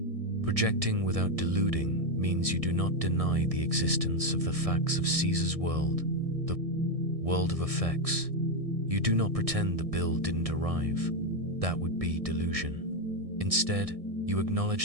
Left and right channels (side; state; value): left; late; 1.6 ms